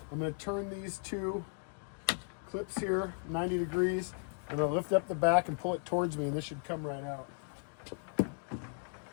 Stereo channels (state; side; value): silent; right; 54 dB below the other